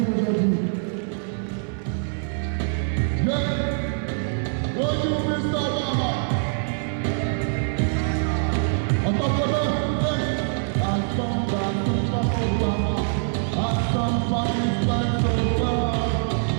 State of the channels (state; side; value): silent; left; 59 dB below the other